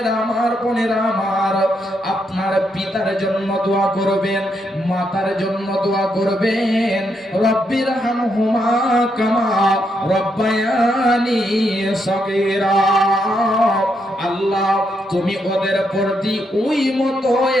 আমার, বোনেরা আমার, আপনার পিতার জন্য দোয়া করবেন, মাতার জন্য দোয়া করবেন। রব্বির হামহুমা কামা রব্বায়ানি সগীরা। আল্লাহ তুমি ওদের প্রতি ওই মতো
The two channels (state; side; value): normal; both; correlation 0.79